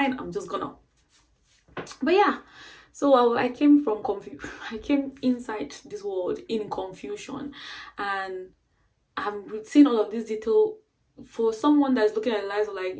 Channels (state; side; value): identical; both; correlation 1.00